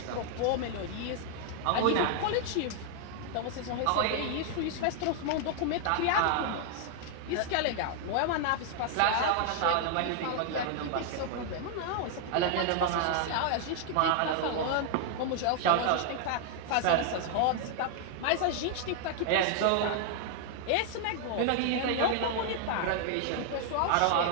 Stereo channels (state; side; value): different; both; correlation 0.00